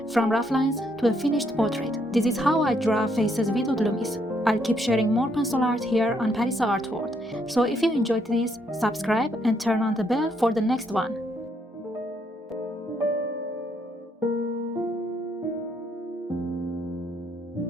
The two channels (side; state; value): both; normal; correlation 0.73